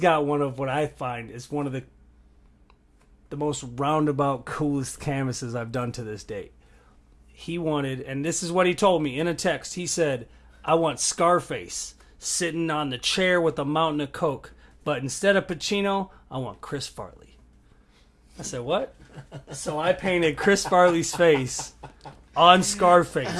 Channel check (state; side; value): identical; both; correlation 1.00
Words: one of what I find is one of the most roundabout, coolest canvases I've done to this date. He wanted, and this is what he told me in a text. He said, "I want Scarface sitting on the chair with a mountain of Coke, but instead of Pacino, I want Chris Farley." I said, "What?" So I painted Chris Farley's face on